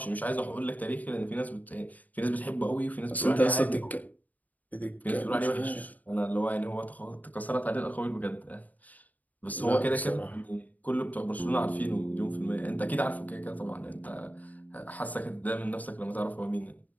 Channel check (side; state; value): right; late; 0.077 ms